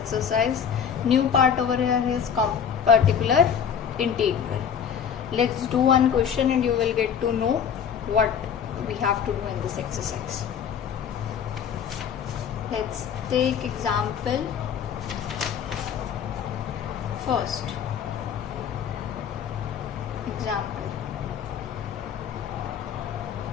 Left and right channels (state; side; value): quieter; right; 7.8 dB